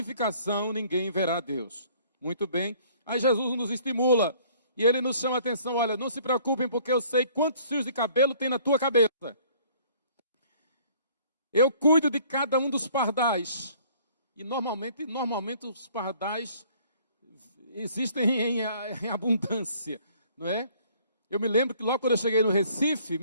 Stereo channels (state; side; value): inverted; both; correlation -0.57